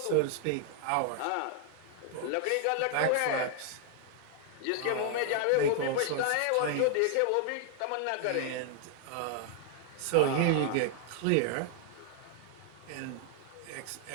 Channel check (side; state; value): both; different; correlation 0.00